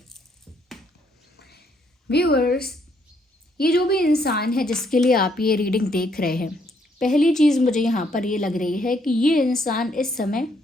Viewers, ये जो भी इंसान है जिसके लिए आप ये रीडिंग देख रहे हैं, पहली चीज़ मुझे यहाँ पर ये लग रही है कि ये इंसान इस समय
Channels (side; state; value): both; normal; correlation 0.70